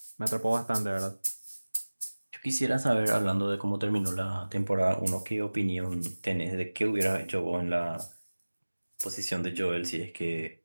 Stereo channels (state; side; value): inverted; both; correlation -1.00